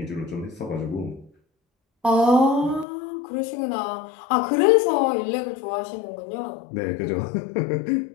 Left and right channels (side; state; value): right; drops out; at 2.9 s